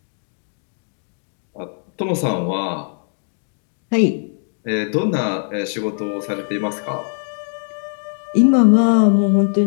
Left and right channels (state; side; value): silent; right; digital silence